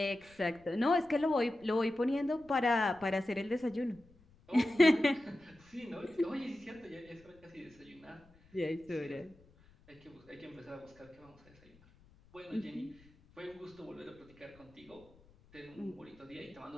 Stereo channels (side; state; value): left; noise; rumble, 28 dB below the sound